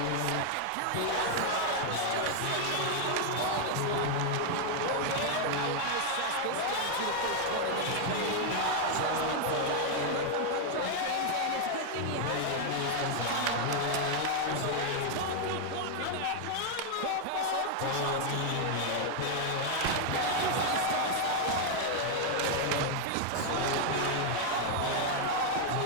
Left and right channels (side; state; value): both; different; correlation 0.00